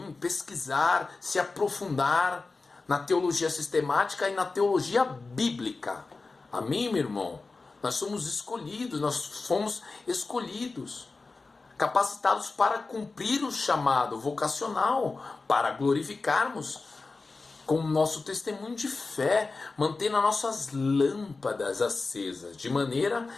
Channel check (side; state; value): right; quieter; 3.8 dB